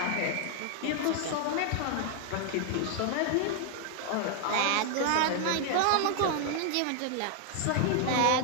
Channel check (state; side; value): different; both; correlation 0.00